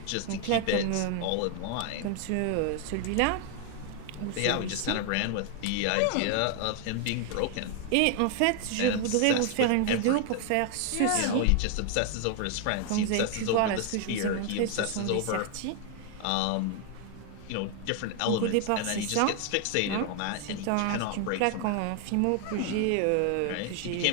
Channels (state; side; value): different; both; correlation 0.00